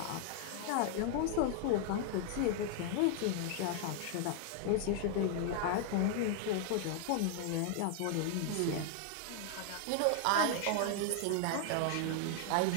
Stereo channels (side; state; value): both; different; correlation 0.00